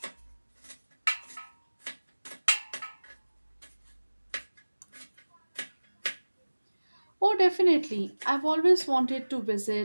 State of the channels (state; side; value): inverted; both; correlation -1.00